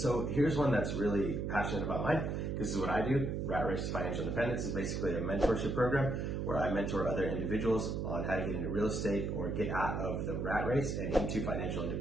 here's one that's really passionate about mine, because this is what I do. RATRACE to Financial Independence is basically a mentorship program where I mentor other individuals on how to get into real estate or get out of the rat race and into financial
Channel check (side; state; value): right; noise; hum, 1 dB below the sound